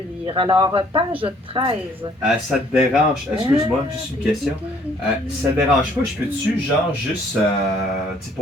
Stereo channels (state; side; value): normal; both; correlation 0.61